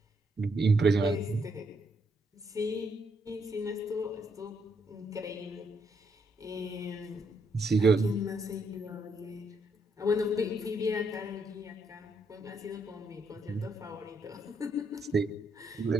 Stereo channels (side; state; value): both; normal; correlation 0.75